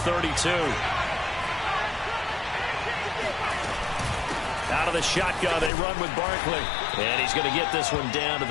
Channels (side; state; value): right; drops out; at 5.7 s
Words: Out of the shotgun, they run with Barkley. And he's going to get this one down to